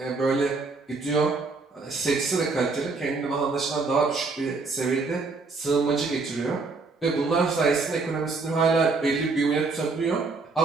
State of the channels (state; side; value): quieter; left; 4.0 dB